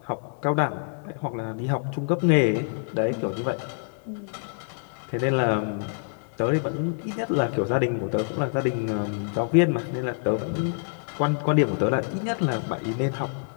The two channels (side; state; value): right; silent; digital silence